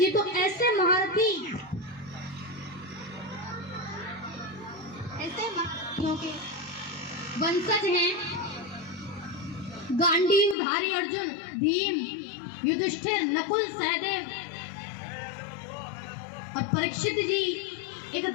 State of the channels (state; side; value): drops out; right; at 10.6 s